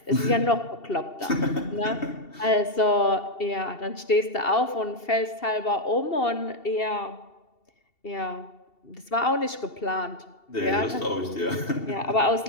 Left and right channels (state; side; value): late; right; 2.7 ms